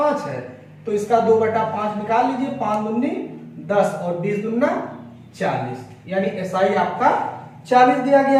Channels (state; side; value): identical; both; correlation 1.00